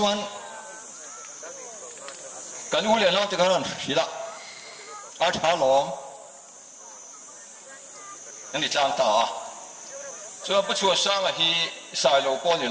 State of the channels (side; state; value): both; identical; correlation 1.00